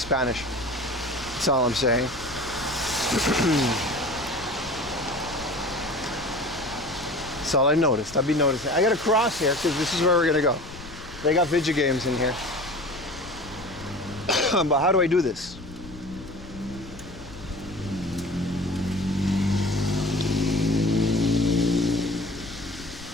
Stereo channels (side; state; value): left; noise; rumble, 16 dB below the sound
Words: That's all I'm saying. That's all I noticed. I've been noticing. I gotta cross here because this is where we're gonna go. They got video games in here. But how do I do this?